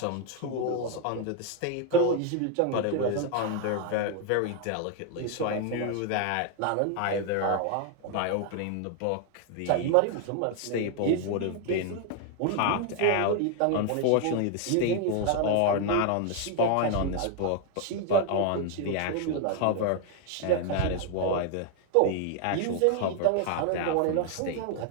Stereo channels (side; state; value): both; different; correlation 0.01